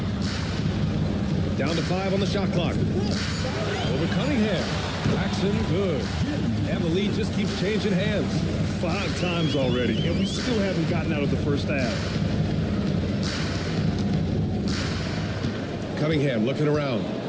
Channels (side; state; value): both; identical; correlation 1.00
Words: Down to 5 on the shot clock. Over Cunningham. Paxson, good. And the lead just keeps changing hands. 5 times already, and we still haven't gotten out of the first half. Cunningham looking around.